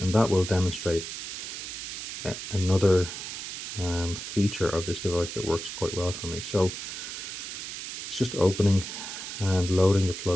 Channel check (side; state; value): right; noise; hiss, 7 dB below the sound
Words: that will demonstrate another feature of this device that works quite well for me. So it's just opening and loading the